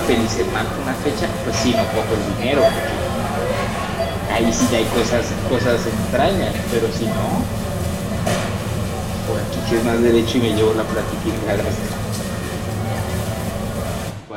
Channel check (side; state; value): both; identical; correlation 1.00